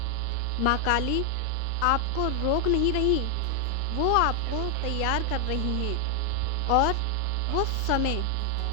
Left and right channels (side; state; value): both; different; correlation 0.00